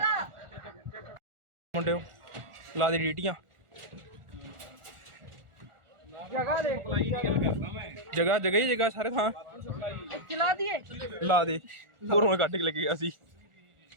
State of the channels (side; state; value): left; late; 1.4 ms